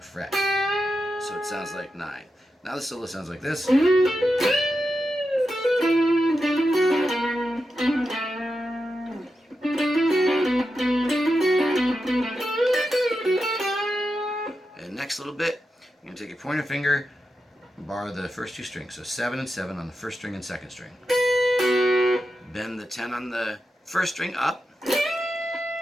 fret. So it sounds like 9. Now the solo sounds like this. And next little bit, you're going to take your pointer finger, bar the first 2 strings. So 7 and 7 on the 1st string and 2nd string. Bend the 10 on the 1st string up.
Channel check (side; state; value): both; normal; correlation 0.89